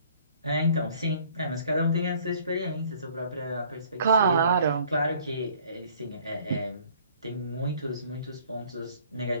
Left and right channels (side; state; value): both; inverted; correlation -0.56